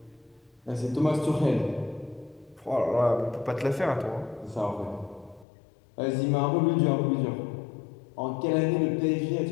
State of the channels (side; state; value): right; drops out; at 5.5 s